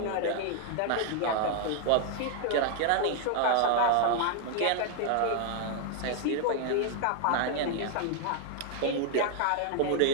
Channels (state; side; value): different; both; correlation 0.00